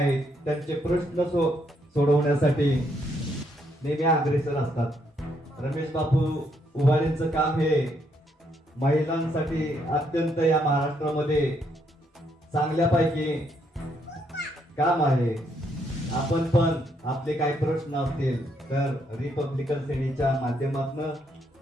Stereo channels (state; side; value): normal; both; correlation 0.74